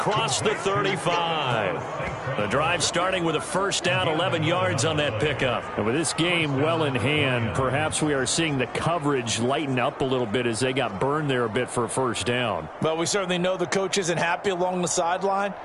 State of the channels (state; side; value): identical; both; correlation 1.00